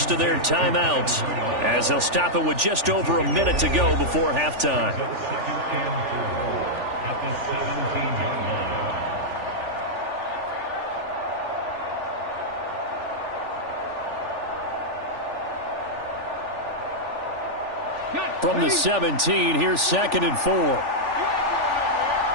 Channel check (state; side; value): late; left; 3.4 ms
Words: of their timeouts as they'll stop it with just over a minute to go before halftime. From the 17, here's 2nd and 4.